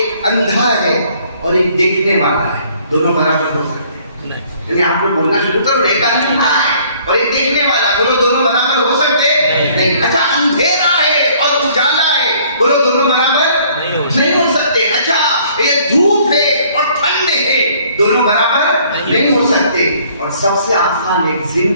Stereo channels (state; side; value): inverted; both; correlation -0.59